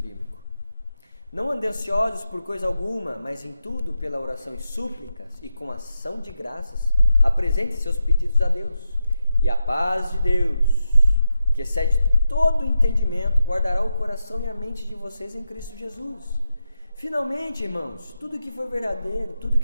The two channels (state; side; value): inverted; both; correlation -0.87